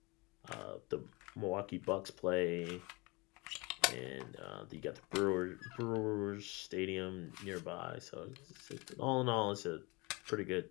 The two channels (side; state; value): right; quieter; 26.2 dB